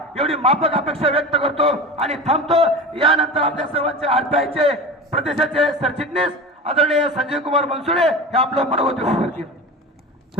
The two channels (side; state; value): both; normal; correlation 0.31